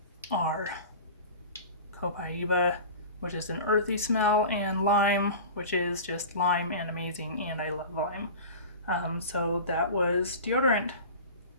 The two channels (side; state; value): both; inverted; correlation -0.35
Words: are copaiba, which is an earthy smell, and lime, which is just lime and amazing, and I love lime. So that was deodorant.